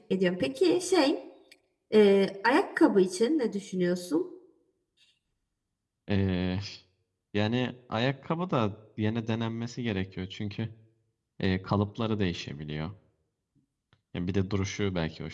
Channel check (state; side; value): identical; both; correlation 1.00